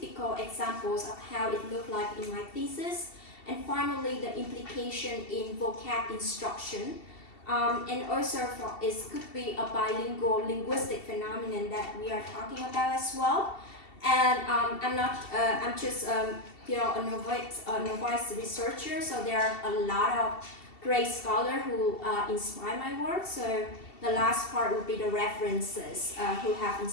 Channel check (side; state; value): right; late; 2.7 ms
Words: examples of how it looked like in my thesis. And finally, the implication in vocab instruction. And also, it could be a bilingual linguistic phenomenon that we are talking about as well. And I'm just a novice researcher, so there are a lot of great scholars who inspire my work. So the last part would be the references who have